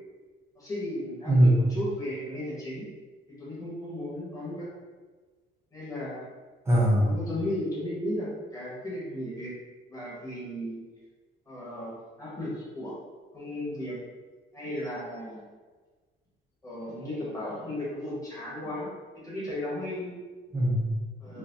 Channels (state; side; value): normal; both; correlation 0.78